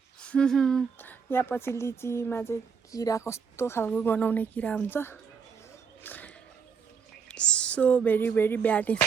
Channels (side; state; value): left; quieter; 6.2 dB